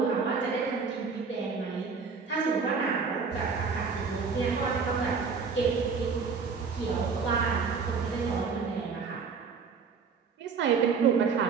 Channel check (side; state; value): left; quieter; 5.3 dB